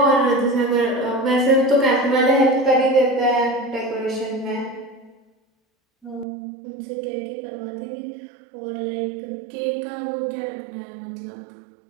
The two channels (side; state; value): left; drops out; at 6.2 s